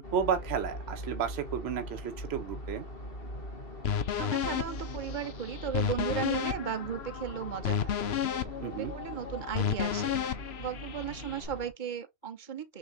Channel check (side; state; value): right; late; 3.0 ms